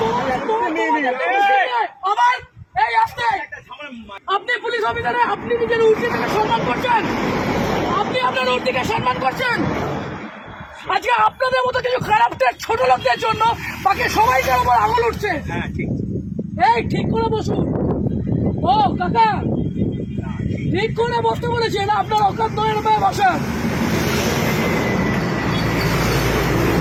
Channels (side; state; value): both; identical; correlation 1.00